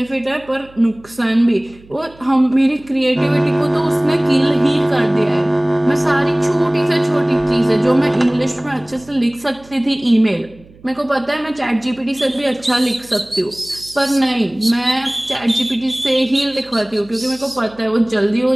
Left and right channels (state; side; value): noise; right; hum, 25 dB below the sound